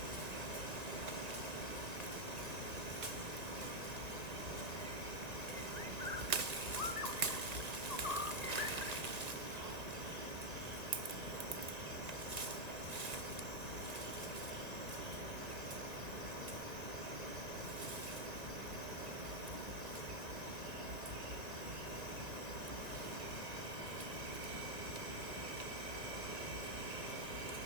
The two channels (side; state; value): left; late; 1.9 ms